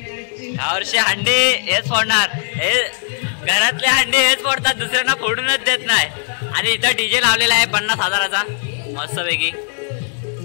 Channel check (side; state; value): right; silent; digital silence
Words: यावर्षी हंडी हेच फोडणार, हे घरातले हंडी हेच फोडतात, दुसऱ्यांना फोडूनच देत नाही। आणि इथं डीजे लावलेला आहे 50,000चा मस्तपैकी।